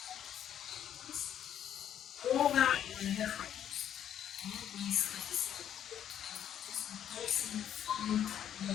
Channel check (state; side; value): quieter; right; 10.0 dB